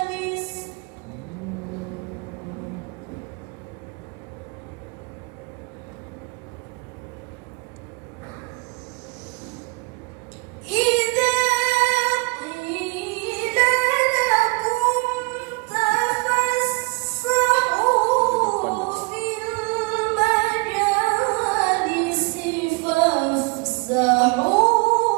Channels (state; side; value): quieter; left; 28.1 dB